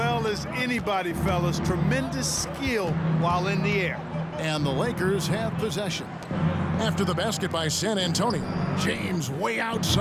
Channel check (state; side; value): identical; both; correlation 1.00